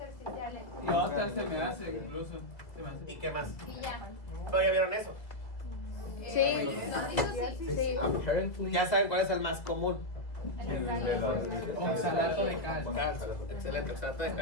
Y otras se me hace, incluso. Se me hace. ¿Y qué más? Y ya. ¿Pero ya vieron eso? Sí. Los rizos sí. Apparently. Ya saben cuál es el más común. Oxalato de calcio. Calcio. Excelente, oxalato de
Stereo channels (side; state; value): right; late; 1.8 ms